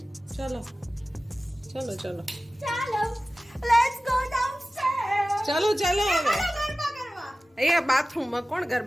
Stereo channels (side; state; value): both; normal; correlation 0.96